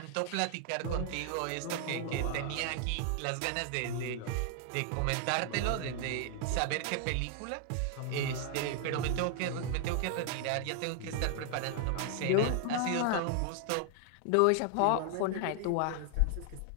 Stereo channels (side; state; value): both; different; correlation 0.00